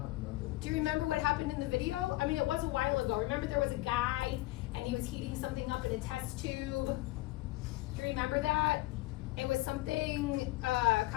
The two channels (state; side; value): quieter; right; 19.3 dB